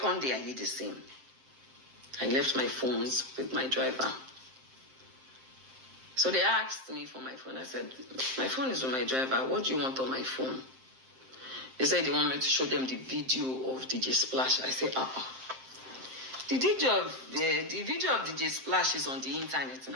day I did the same. I left my phones with my driver. So they asked me for my phone. I said, my phone is with my driver. What do you want on my phone? They said they want me to show them the video of DJ Splash. I said, The video of DJ Splash is on the internet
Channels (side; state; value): left; late; 7.6 ms